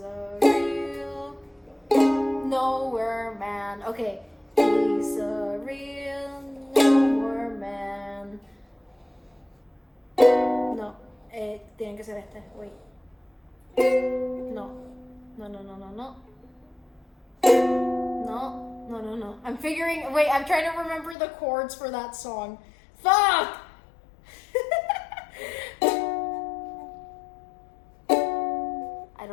nowhere man. Okay. He's a real nowhere man. No. Tiene que ser este. Wait. No. No. I'm trying to remember the chords for that song. Fuck! I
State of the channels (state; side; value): drops out; right; at 21.2 s